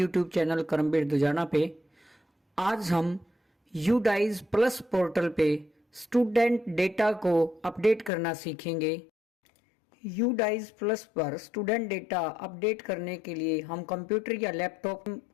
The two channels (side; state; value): right; drops out; at 8.1 s